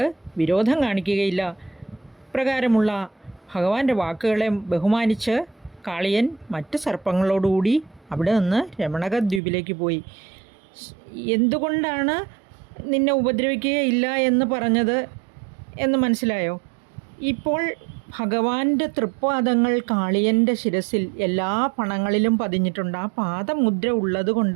വിരോധം കാണിക്കുകയില്ല. ഇപ്രകാരമുള്ള ഭഗവാന്റെ വാക്കുകളെ ബഹുമാനിച്ച് കാളിയൻ മറ്റ് സർപ്പങ്ങളോടുകൂടി അവിടെ നിന്ന് രമണക ദ്വീപിലേക്ക് പോയി. എന്തുകൊണ്ടാണ് നിന്നെ ഉപദ്രവിക്കുകയില്ല എന്ന് പറഞ്ഞത് എന്ന് മനസ്സിലായോ? ഇപ്പോൾ ഭഗവാന്റെ തൃപ്പാദങ്ങൾ കാളിയൻ്റെ ശിരസിൽ എല്ലാ പണങ്ങളിലും പതിഞ്ഞിട്ടുണ്ട്. ആ പാദമുദ്ര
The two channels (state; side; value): drops out; left; at 9.4 s